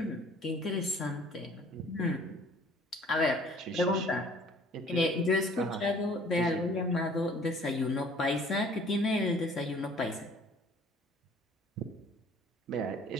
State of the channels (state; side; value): normal; both; correlation 0.54